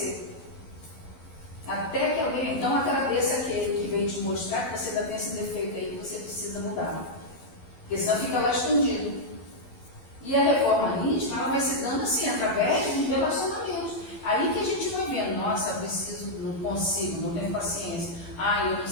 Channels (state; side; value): late; right; 12 ms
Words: Até que alguém, então agradeça aquele que veio te mostrar que você ainda tem esse defeito aí que você precisa mudar. Porque senão fica lá escondido. E a reforma íntima, ela vai se dando assim, através de relacionamentos. Aí que a gente vai vendo, nossa, eu preciso, não consigo, não tenho paciência. Eu não